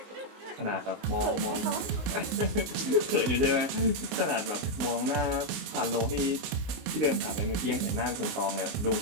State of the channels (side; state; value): left; late; 19 ms